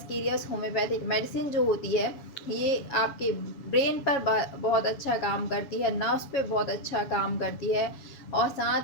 होम्योपैथिक मेडिसिन जो होती है, ये आपके ब्रेन पर बहुत अच्छा काम करती है, नर्व्स पे बहुत अच्छा काम करती है और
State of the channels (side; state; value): right; late; 7.3 ms